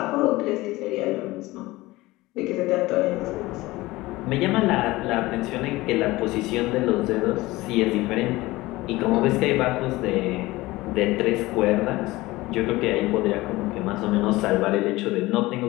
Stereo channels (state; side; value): quieter; right; 19.5 dB